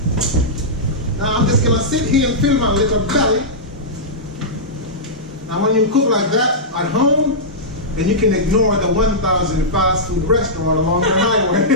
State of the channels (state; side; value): normal; both; correlation -0.13